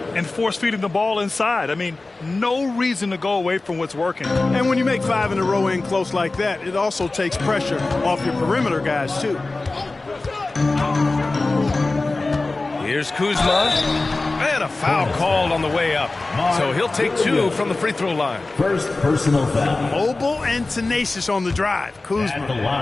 And force feeding the ball inside. I mean, no reason to go away from what's working. And when you make 5 in a row in close like that, it also takes pressure off your perimeter guys, too. Here's Kuzma. And a foul called on the way up. So he'll take 2 from the free throw line. First personal foul. Mobile and tenacious on the drive.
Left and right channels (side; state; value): right; quieter; 3.3 dB